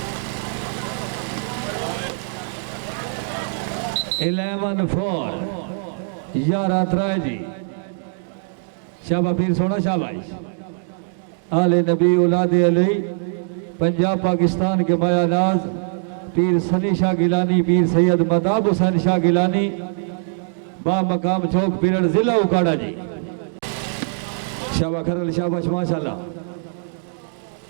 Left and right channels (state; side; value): silent; left; digital silence